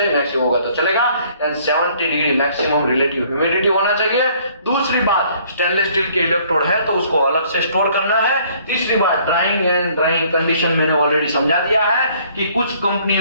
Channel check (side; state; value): both; inverted; correlation -0.60